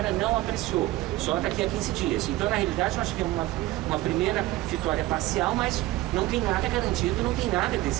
não apreciou, só daqui a 15 dias. Então, na realidade, nós tivemos uma primeira vitória parcial, mas não tem nada garantido, não tem nada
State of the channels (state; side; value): quieter; left; 17.3 dB